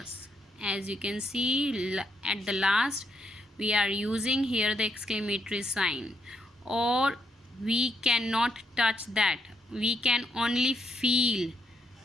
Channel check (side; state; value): both; normal; correlation 0.77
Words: As you can see at the last, we are using here the exclamatory sign. Or we cannot touch that. We can only feel.